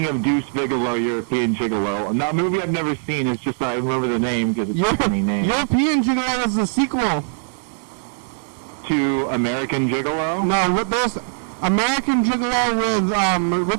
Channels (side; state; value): left; silent; digital silence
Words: of Deuce Bigelow, European Gigolo. And that movie I've never seen. It's just I remember the name because it's a funny name. European Gigolo is the sequel to American Gigolo. No, there's American Gigolo with